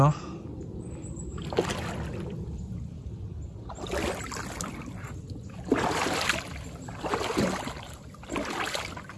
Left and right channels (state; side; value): identical; both; correlation 1.00